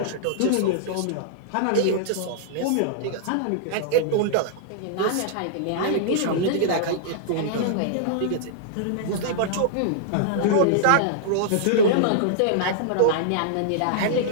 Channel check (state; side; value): different; both; correlation -0.02